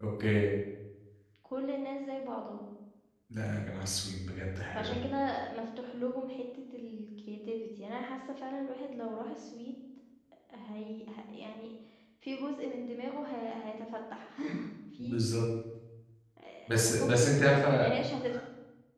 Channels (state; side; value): identical; both; correlation 1.00